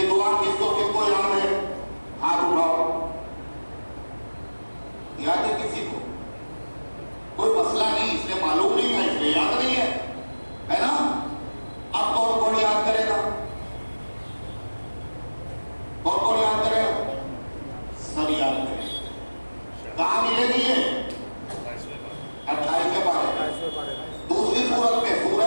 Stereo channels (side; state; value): both; inverted; correlation -1.00